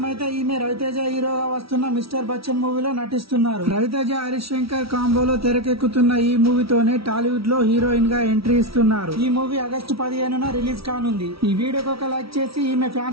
అయితే ఈమె రవితేజ హీరోగా వస్తున్న మిస్టర్ బచ్చన్ మూవీలో నటిస్తున్నారు. రవితేజ హరీష్ శంకర్ కాంబోలో తెరకెక్కుతున్న ఈ మూవీతోనే టాలీవుడ్ లో హీరోయిన్ గా ఎంట్రీ ఇస్తున్నారు. ఈ మూవీ ఆగస్టు 15న రిలీజ్ కానుంది. ఈ వీడియోకి ఒక లైక్ చేసి ఈమె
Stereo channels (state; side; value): late; left; 0.75 ms